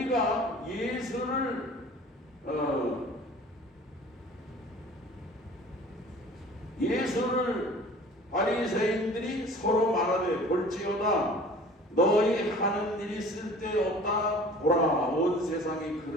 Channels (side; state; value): both; normal; correlation 0.46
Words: 예수를 바리새인들이 서로 말하되, 볼지어다 너희 하는 일이 쓸데없다. 보라, 온 세상이